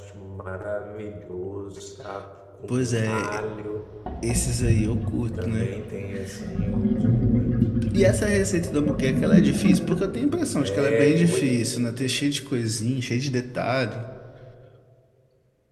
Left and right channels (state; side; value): identical; both; correlation 1.00